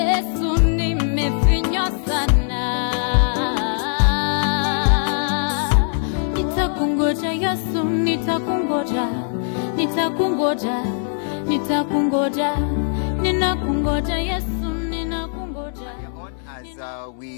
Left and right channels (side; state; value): right; silent; 62 dB below the other